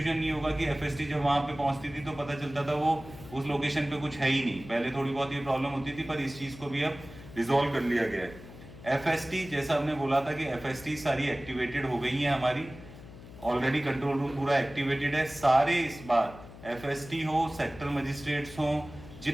नहीं होगा कि FST जब वहां पे पहुंचती थी तो पता चलता था वो उस लोकेशन पे कुछ है ही नहीं। पहले थोड़ी बहुत ये प्रॉब्लम होती थी, पर इस चीज को भी अब रिजॉल्व कर लिया गया है। FST जैसा हमने बोला था कि FST सारी एक्टिवेटेड हो गई है हमारी, ऑलरेडी कंट्रोल रूम पूरा एक्टिवेटेड है। सारे इस बार FST हो, सेक्टर मजिस्ट्रेट्स हो,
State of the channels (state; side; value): noise; left; hum, 17 dB below the sound